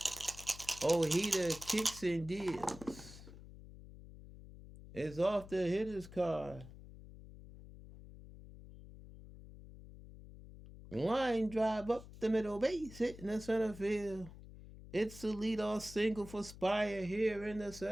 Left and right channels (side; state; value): left; noise; hum, 16 dB below the sound